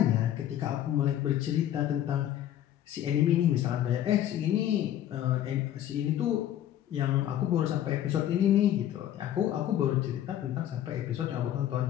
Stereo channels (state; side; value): quieter; right; 11.7 dB